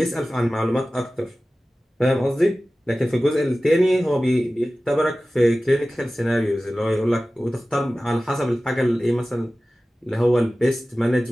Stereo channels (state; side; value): normal; both; correlation 0.96